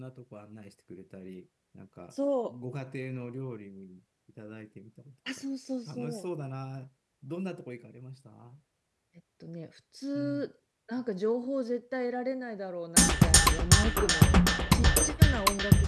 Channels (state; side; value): identical; both; correlation 1.00